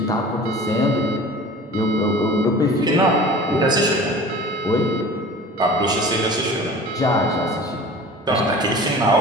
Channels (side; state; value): both; normal; correlation 0.42